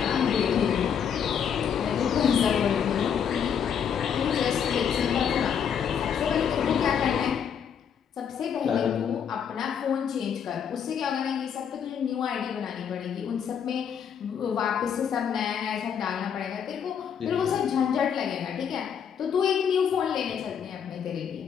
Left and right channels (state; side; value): quieter; right; 7.8 dB